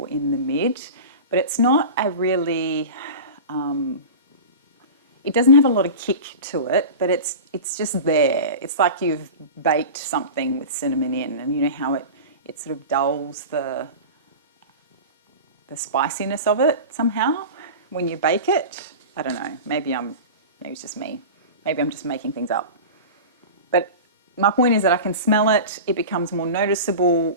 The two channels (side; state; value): both; inverted; correlation -0.31